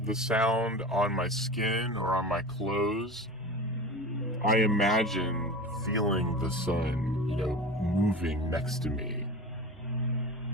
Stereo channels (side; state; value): right; noise; hum, 28 dB below the sound